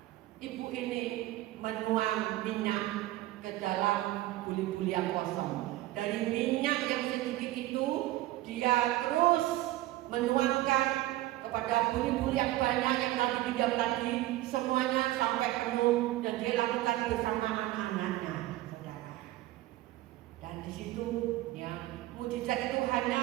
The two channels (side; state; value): left; quieter; 16.6 dB